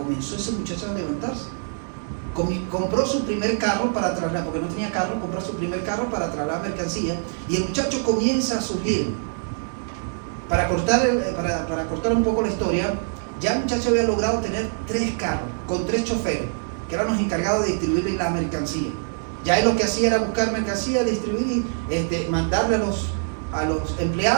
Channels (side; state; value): left; silent; 63 dB below the other